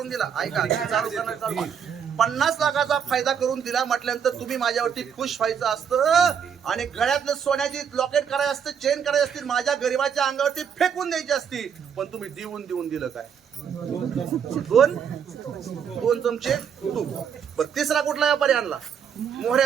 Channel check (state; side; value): quieter; left; 7.6 dB